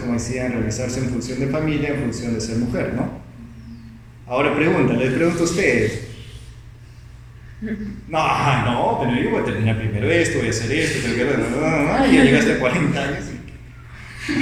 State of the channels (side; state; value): both; identical; correlation 1.00